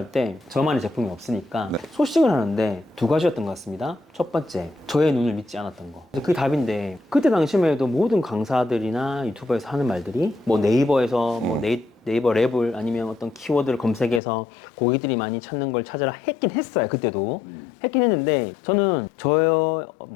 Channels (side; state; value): right; drops out; at 14.2 s